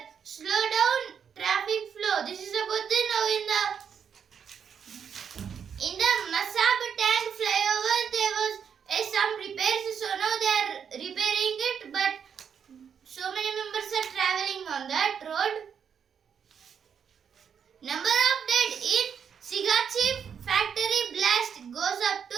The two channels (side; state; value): left; quieter; 7.4 dB